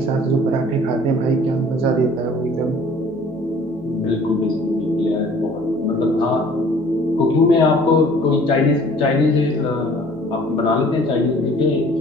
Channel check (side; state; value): left; noise; hum, 26 dB below the sound